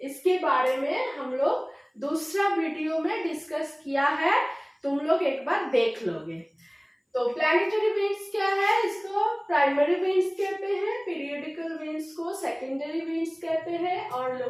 इसके बारे में हम लोग दूसरा वीडियो में डिस्कस किया है, तुम लोग एक बार देख लोगे। तो प्लैनेटरी विंड्स क्या है? इसको प्राइमरी विंड्स कहते हैं, पीरियोडिकल विंड्स को सेकेंडरी विंड्स कहते हैं और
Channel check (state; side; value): identical; both; correlation 1.00